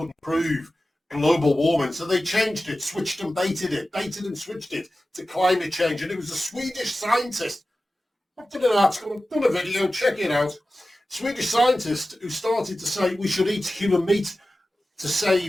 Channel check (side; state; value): both; normal; correlation 0.95